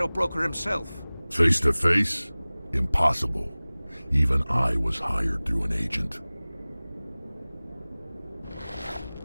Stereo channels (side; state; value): both; inverted; correlation -0.99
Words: Broker himself. Face to face? Impossible. Even I was hired through an agent.